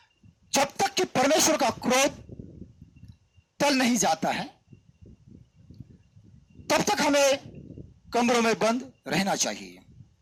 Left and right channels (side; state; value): both; identical; correlation 1.00